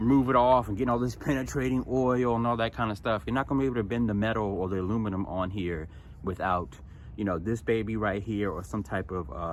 it off and getting all this penetrating oil and all that kind of stuff. You're not gonna be able to bend the metal or the aluminum on here without, you know, this baby right here, or some type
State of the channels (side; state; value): both; identical; correlation 1.00